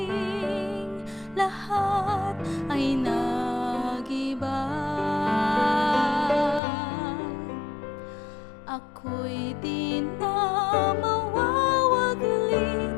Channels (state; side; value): drops out; right; at 6.6 s